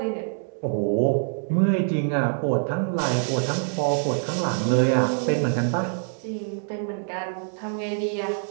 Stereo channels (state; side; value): silent; left; digital silence